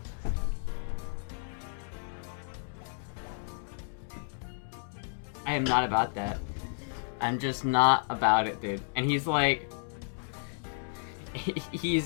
I am not about that. I'm just not about it, dude. And he's like,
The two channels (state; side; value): silent; right; digital silence